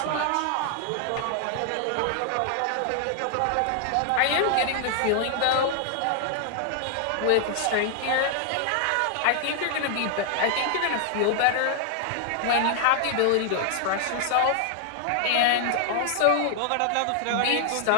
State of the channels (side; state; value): both; different; correlation 0.00